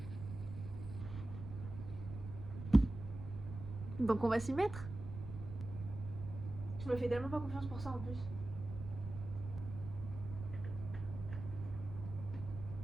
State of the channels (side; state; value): right; noise; rumble, 9 dB below the sound